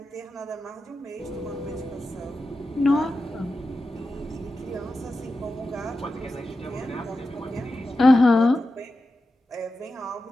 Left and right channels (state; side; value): normal; both; correlation 0.91